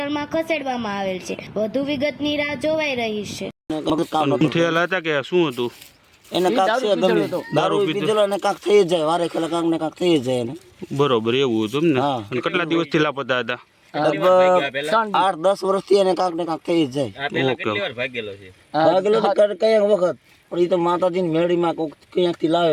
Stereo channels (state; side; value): identical; both; correlation 1.00